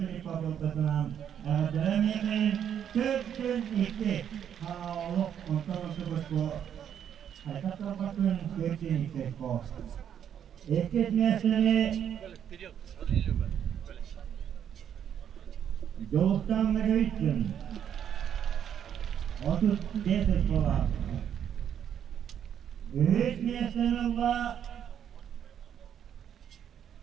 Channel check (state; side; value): quieter; left; 9.1 dB